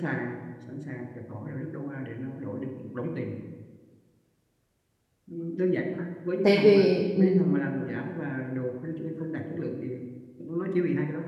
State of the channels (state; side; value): identical; both; correlation 1.00